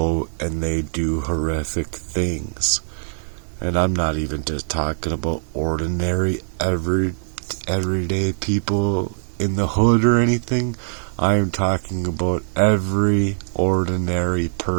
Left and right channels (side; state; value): left; silent; 64 dB below the other